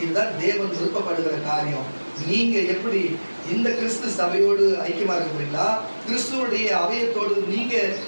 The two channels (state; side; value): inverted; both; correlation -1.00